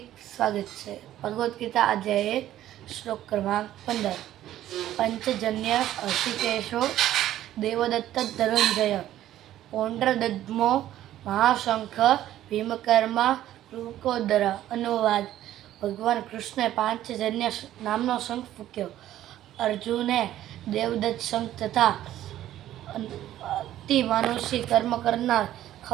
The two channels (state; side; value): quieter; left; 12.9 dB